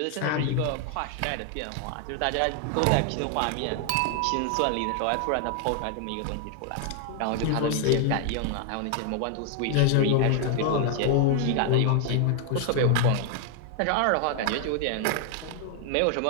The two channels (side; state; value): both; different; correlation 0.00